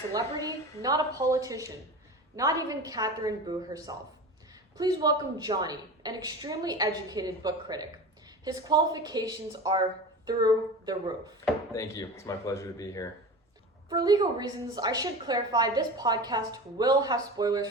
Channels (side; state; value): both; normal; correlation 0.31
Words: not a politician, not even Catherine Boo herself. Please welcome Johnny, an extremely educated book critic. His qualifications are through the roof. Thank you. It's my pleasure to be here. For legal reasons, I should clarify this podcast will have spoilers